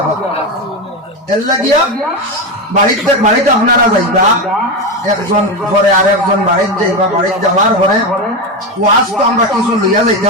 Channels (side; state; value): both; normal; correlation 0.15